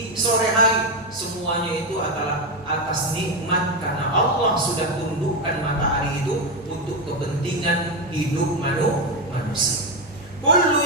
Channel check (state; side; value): normal; both; correlation 0.10